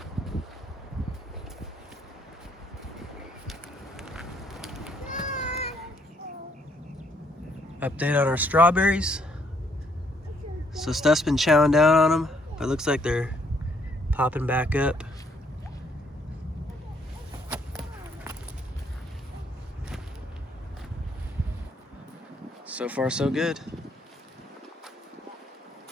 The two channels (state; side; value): normal; both; correlation 0.68